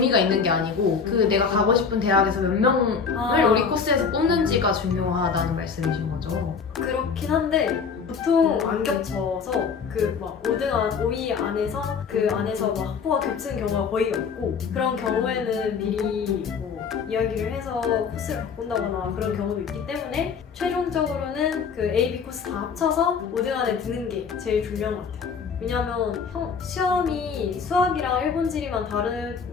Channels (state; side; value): quieter; right; 5.9 dB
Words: 있는 게 아니고 그 내가 가고 싶은 대학에서 몇 명을 우리 코스에서 뽑는지가 중요하다는 말씀이신 거죠? 그렇긴 한데 보통 안 겹쳐서 그 막 5위 안에서 그 안에서 막 학부가 겹치는 경우가 거의 없고 그런 경우에는 미리 뭐 이야기를 해서 코스를 바꾼다거나 그런 경우도 있기 때문에 최종적으로는 그 A, B 코스 다 합쳐서 5등 안에 드는 게 제일 중요한 것 같아요. 왜냐면 시험이 수학이랑 일본 지리만